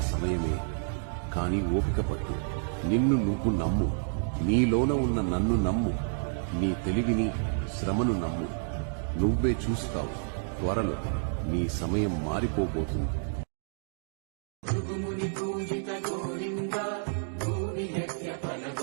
సమయమే, కాని ఓపిక పట్టు. నిన్ను నువ్వు నమ్ము. నీలోన ఉన్న నన్ను నమ్ము. నీ తెలివిని, శ్రమను నమ్ము. నువ్వే చూస్తావు, త్వరలో నీ సమయం మారిపోబోతుంది. భృగుముని పూజిత గోవింద, భూమి యజ్ఞ ఫల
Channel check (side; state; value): left; silent; digital silence